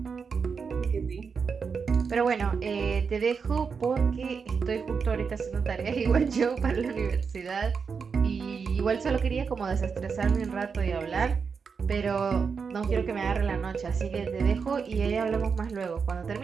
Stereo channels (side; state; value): left; quieter; 5.7 dB